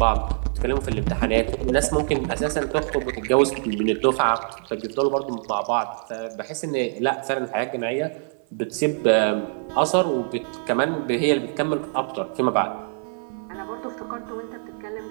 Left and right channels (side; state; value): left; silent; 57 dB below the other